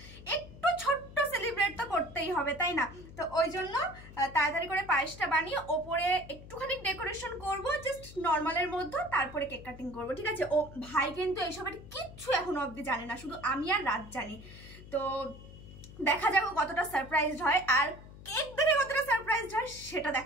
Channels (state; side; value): noise; left; hum, 17 dB below the sound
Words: একটু ছোট্ট সেলিব্রেট তো করতেই হবে, তাই না? তো ওই জন্য তাড়াতাড়ি করে পায়েসটা বানিয়ে ওপরে একটুখানি ডেকোরেশন করব, জাস্ট নর্মালের মধ্যে, তারপরে কেক কাটিং করবো, ঠিক আছে? ও ভাই কিন্তু এইসবের কিচ্ছু এখনো অবধি জানে না, শুধু আমি আর রাত জানি। তো দেখা যাক কতটা সারপ্রাইজড হয়, আর কেক দেখে কতটা সারপ্রাইজড হয় সেটা